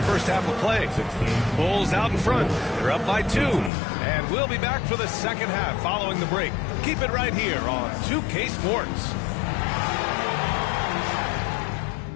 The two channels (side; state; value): right; drops out; at 3.7 s